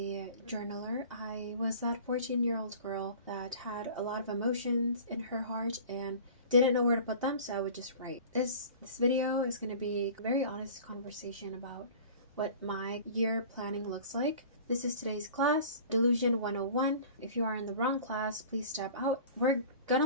journaler. I was that 14-year-old girl that had a lot of emotions in her heart and didn't know where to put them, so I would just write. This video is going to be a very honest conversation about what my year planning looks like. This is today's class, Delusion 101. If you are in the wrong class, please step out. We're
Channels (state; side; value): inverted; both; correlation -0.42